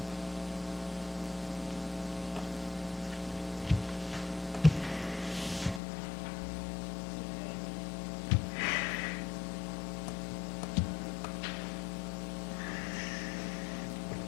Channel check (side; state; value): right; drops out; at 5.8 s